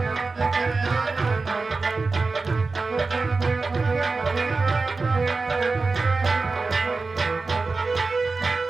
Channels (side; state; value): left; quieter; 3.9 dB